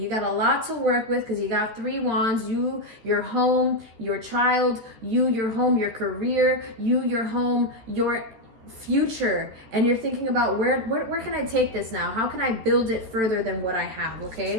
got a lot to work with because you got 3 wands. You, your home, your child, you, your home, your career, you, your home, your future. And you're thinking about where can I take this now? How can I build it further than what I have,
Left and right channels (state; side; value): late; left; 13 ms